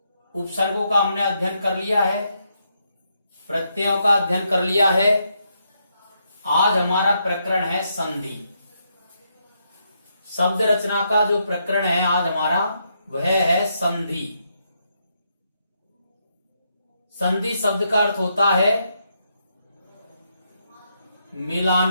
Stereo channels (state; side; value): inverted; both; correlation -0.79